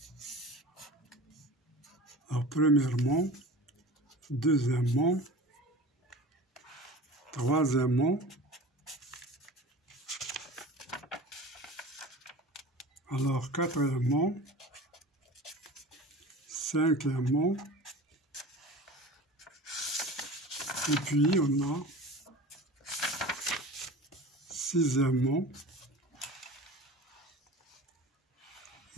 Alors premièrement, deuxièmement, troisièmement, alors quatrièmement, cinquièmement, et puis on a sixièmement,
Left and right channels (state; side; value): normal; both; correlation 0.37